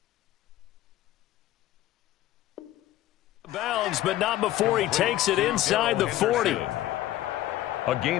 bounds, but not before he takes it inside the 40. A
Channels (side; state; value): right; quieter; 14.4 dB